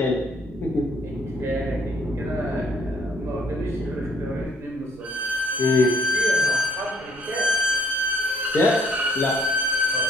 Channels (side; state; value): both; normal; correlation 0.63